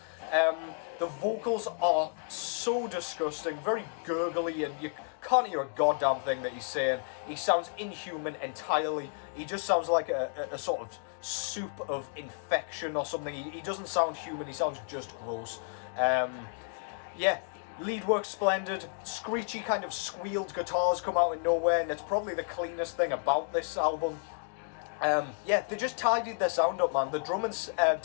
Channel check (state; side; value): silent; right; 57 dB below the other